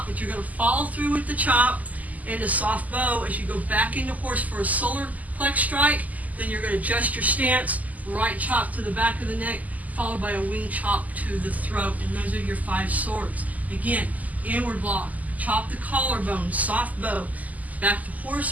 but you're going to follow through with the chop and a soft bow as you go back into horse for a solar plex strike. Then you're going to adjust your stance, right chop to the back of the neck, followed by a wing chop to the throat. And those are your 5 swords. Again, inward block, chop the collarbone, soft bow, back to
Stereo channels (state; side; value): late; left; 0.077 ms